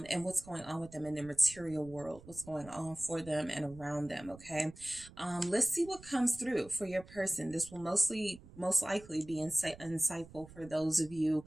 what's going on with them in their material world, what's going on for them and around them, okay? Let's see what comes through for your person. This will most likely be insightful for those of you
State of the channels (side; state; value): right; noise; rumble, 19 dB below the sound